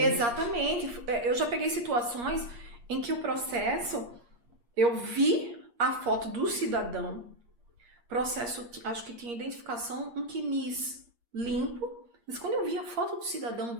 Eu já peguei situações em que o processo, eu vi a foto do cidadão, processo, acho que tinha identificação, um quinis limpo, mas quando eu vi a foto do cidadão,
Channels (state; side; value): late; left; 8.5 ms